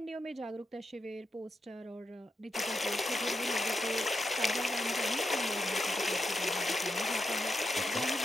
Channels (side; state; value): both; normal; correlation 0.85